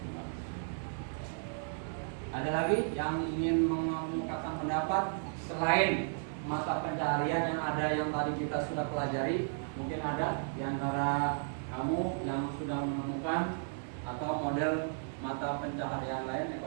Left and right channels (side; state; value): left; silent; 55 dB below the other